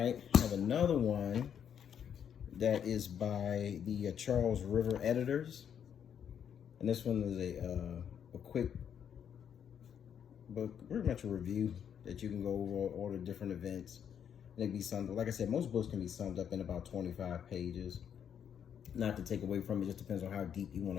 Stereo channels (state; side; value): quieter; right; 8.5 dB